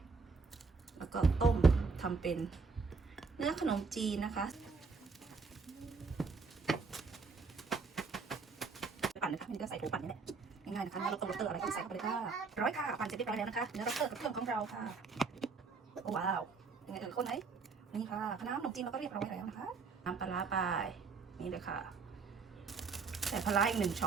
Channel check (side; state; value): left; quieter; 4.6 dB